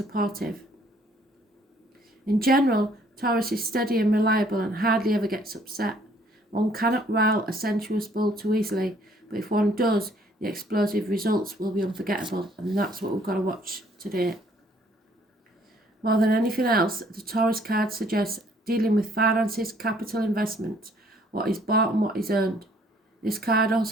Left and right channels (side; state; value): both; normal; correlation 0.61